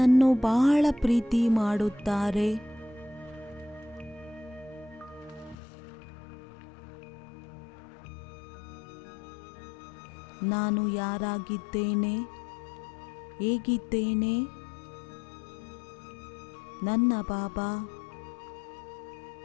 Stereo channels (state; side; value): drops out; right; at 5.6 s